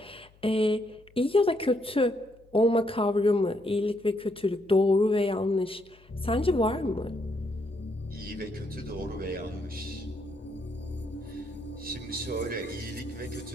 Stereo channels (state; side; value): noise; left; hum, 28 dB below the sound